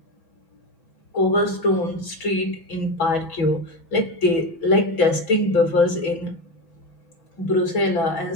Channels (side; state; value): right; late; 6.1 ms